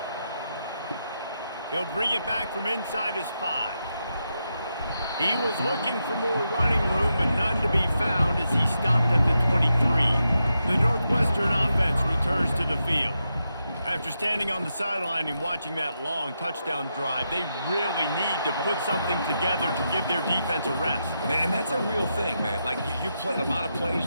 He'll bring it back from inside his 5. He was looking for more running room, but none to be found as he stopped at the 23. The Northwestern offense returns to the field. After standing on the sideline and watching that long touchdown drive, they really need to put something together to give their defense a rest. And that's a real thing, man. Like, you've played a lot of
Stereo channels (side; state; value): both; inverted; correlation -0.85